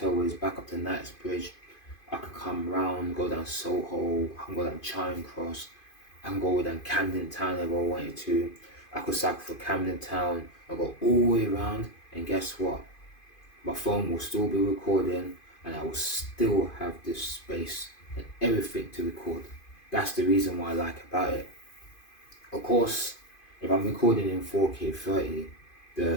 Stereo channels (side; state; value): right; late; 2.5 ms